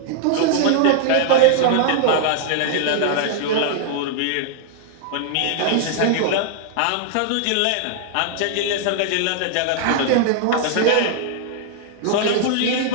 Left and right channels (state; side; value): different; both; correlation 0.00